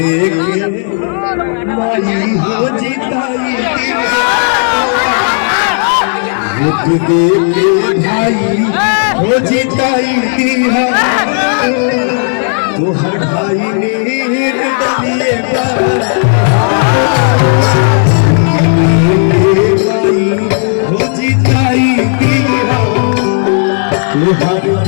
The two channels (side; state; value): right; silent; 57 dB below the other